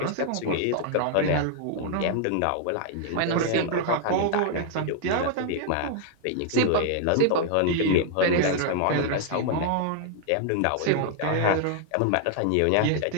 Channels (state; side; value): different; both; correlation 0.00